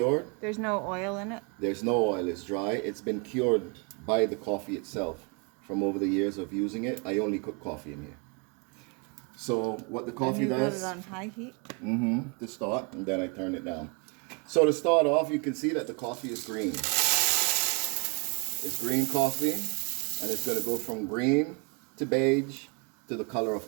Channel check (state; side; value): quieter; left; 33.5 dB